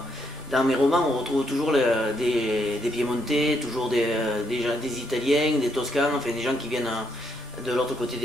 dans mes romans, on retrouve toujours des Piémontais, toujours des Italiens, des Toscans, enfin des gens qui viennent de l'autre côté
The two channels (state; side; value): normal; both; correlation 0.75